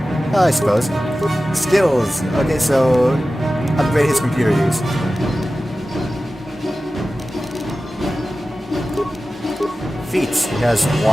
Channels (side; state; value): both; normal; correlation 0.95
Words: I suppose. Skills. Okay, so upgrade his computer use. Feats. He has